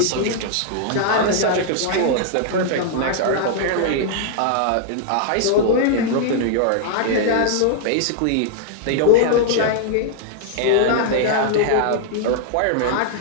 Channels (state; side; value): different; both; correlation -0.01